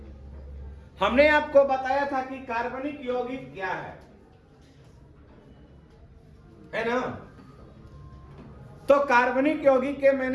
हमने आपको बताया था कि कार्बनिक यौगिक क्या है ना। तो कार्बनिक यौगिक के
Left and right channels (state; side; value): identical; both; correlation 1.00